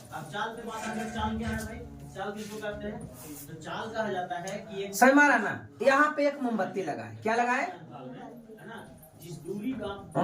अब चाल पे बात आगे, चाल क्या है भाई? चाल किसको कहते हैं? तो चाल कहा जाता है कि एक सही मारा ना। यहाँ पे एक मोमबत्ती लगा है। क्या लगा है? है ना, जिस दूरी का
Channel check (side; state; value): both; identical; correlation 1.00